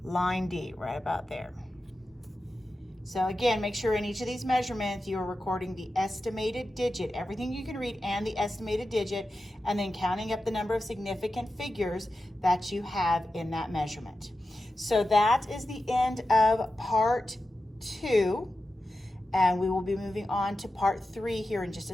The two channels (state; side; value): normal; both; correlation 0.92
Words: line D, right about there. So again, make sure in each of these measurements you are recording the estimated digit, everything you can read and the estimated digit, and then counting up the number of significant figures that you have in that measurement. So that is the end of part 2, and we will be moving on to part 3 here in just